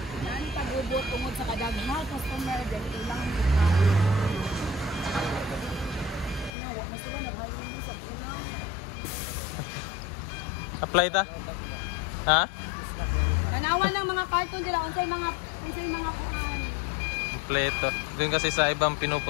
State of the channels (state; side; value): drops out; right; at 6.5 s